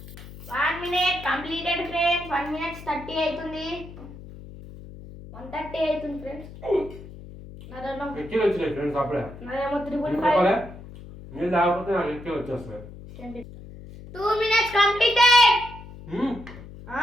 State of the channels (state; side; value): noise; left; hum, 15 dB below the sound